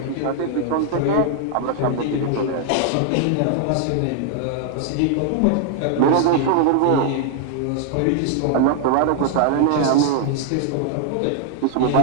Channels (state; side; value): different; both; correlation 0.00